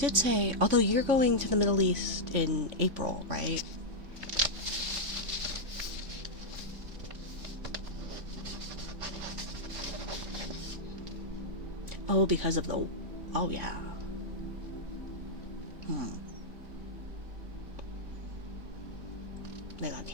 say, although you're going to the Middle East in April, right? Oh, because of the... Oh yeah.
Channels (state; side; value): late; left; 3.6 ms